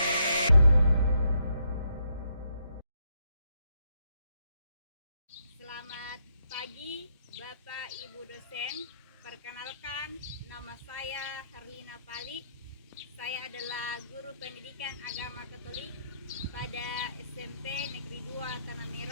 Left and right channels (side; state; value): both; inverted; correlation -0.75